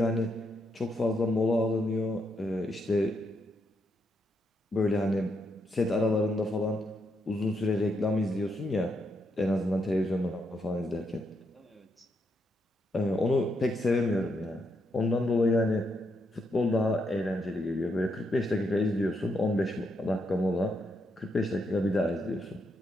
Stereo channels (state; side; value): normal; both; correlation 0.79